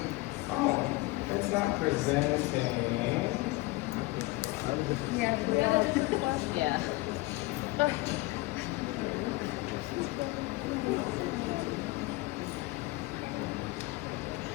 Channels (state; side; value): quieter; right; 21.2 dB